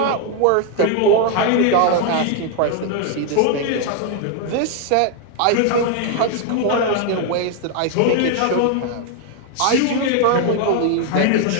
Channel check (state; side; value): different; both; correlation 0.00